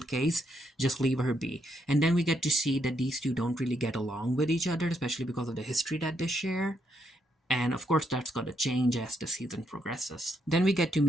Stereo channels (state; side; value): normal; both; correlation 0.77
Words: case, just leave her be. And then we get to see that these two don't really get along with each other, especially because of the history that they share. And of course, that's going to change as the season progresses. Then we get to